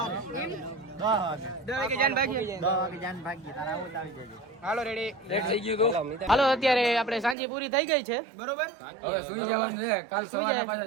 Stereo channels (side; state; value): left; drops out; at 7.4 s